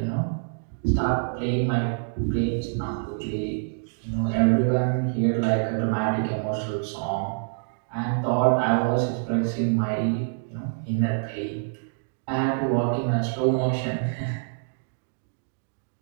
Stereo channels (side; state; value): left; silent; digital silence